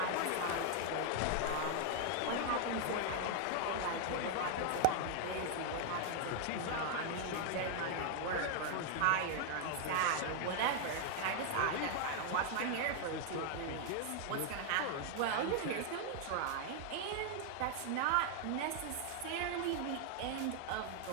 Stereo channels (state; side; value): different; both; correlation 0.00